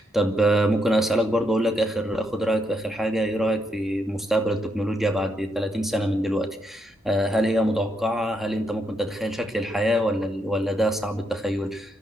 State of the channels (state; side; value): normal; both; correlation 0.78